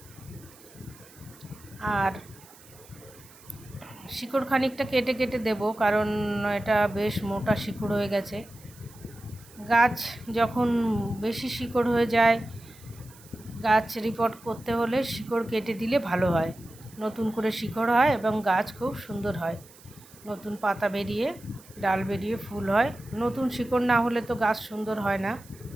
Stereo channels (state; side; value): noise; right; hiss, 23 dB below the sound